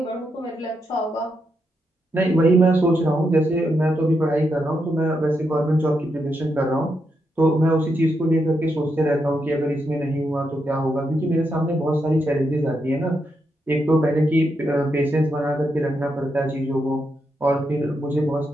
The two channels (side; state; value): both; normal; correlation 0.83